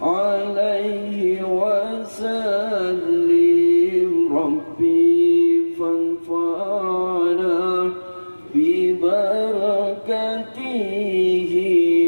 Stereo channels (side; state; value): both; inverted; correlation -1.00